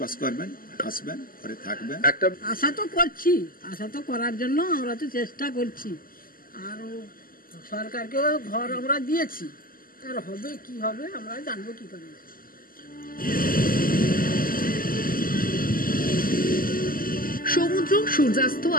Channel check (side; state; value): right; late; 0.42 ms